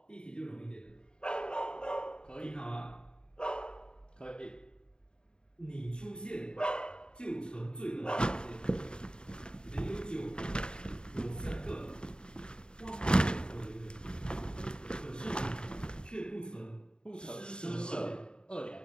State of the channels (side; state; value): right; late; 0.049 ms